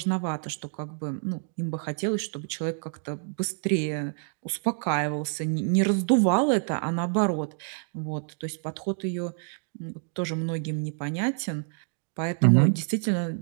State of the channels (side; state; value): left; silent; 60 dB below the other